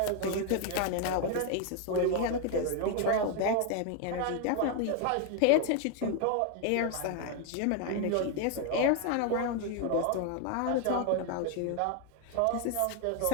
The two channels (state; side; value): different; both; correlation 0.01